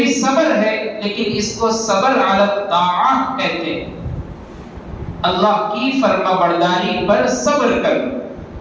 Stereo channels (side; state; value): both; identical; correlation 1.00